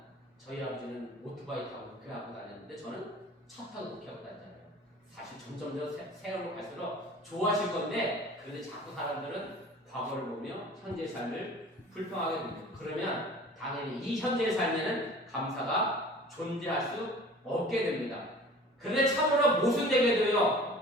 저희 아버지는 오토바이 타고 목회하고 다녔는데 저는 차 타고 목회하고 다녔잖아요. 사실 점점 더 세월로 갈수록 좋아질 건데 그런데 자꾸 사람들은 과거를 보며 현재의 삶을 불평하게 됩니다. 그러면 당연히 이 현재의 삶에는 감사가 존재할 수 없게 됩니다. 그런데 참으로 모순되게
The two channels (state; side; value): normal; both; correlation 0.44